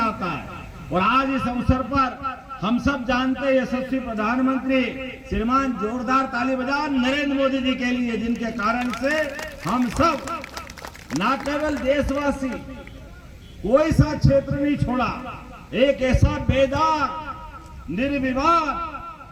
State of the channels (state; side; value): identical; both; correlation 1.00